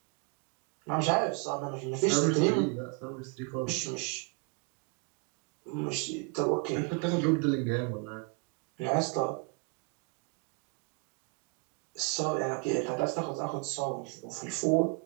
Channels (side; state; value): left; quieter; 33.4 dB